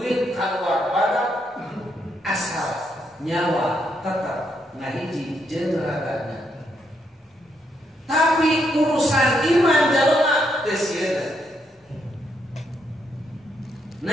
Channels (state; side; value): normal; both; correlation 0.77